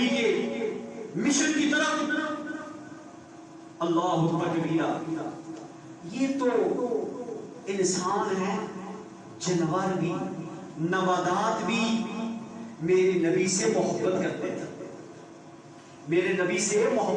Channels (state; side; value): identical; both; correlation 1.00